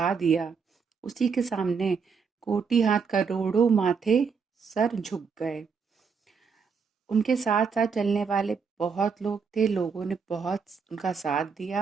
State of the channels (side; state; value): left; quieter; 5.7 dB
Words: दिया, उसी के सामने कोटि हाथ, करोड़ों माथे सर झुक गए। उनके साथ साथ चलने वाले बहुत लोग थे, लोगों ने बहुत उनका साथ